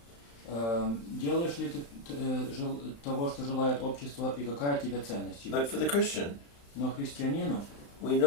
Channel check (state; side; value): late; right; 35 ms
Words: Делаешь ли ты того, что желает общество, и какая тебе ценность? But for the Christian, Но христианину we